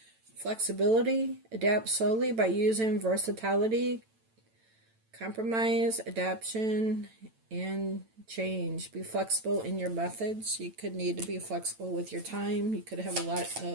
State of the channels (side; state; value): left; late; 9.0 ms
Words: Flexibility. Adapt slowly by using versatility, compromise, adaptation, and change. Be flexible in your methods. You could need to be flexible with your time. You could have a lot